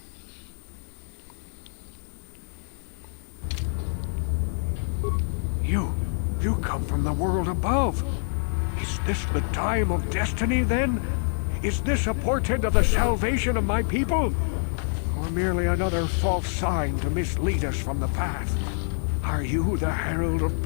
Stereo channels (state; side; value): silent; right; 58 dB below the other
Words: You come from the world above. Is this the time of destiny, then? Is this a portent of the salvation of my people? Or merely another false sign to mislead us from the path? Are you the herald of